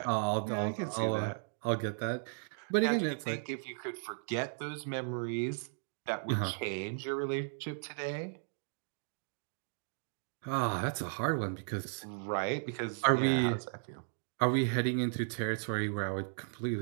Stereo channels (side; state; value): left; silent; digital silence